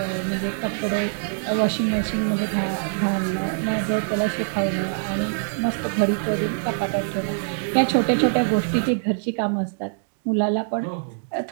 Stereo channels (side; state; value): left; silent; digital silence